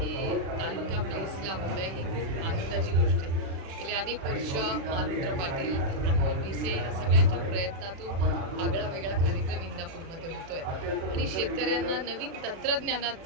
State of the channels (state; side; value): late; left; 36 ms